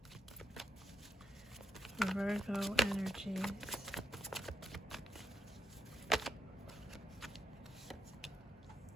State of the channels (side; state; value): both; normal; correlation 0.83